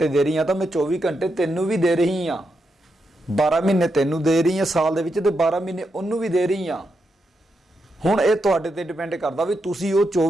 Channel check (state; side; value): normal; both; correlation 0.84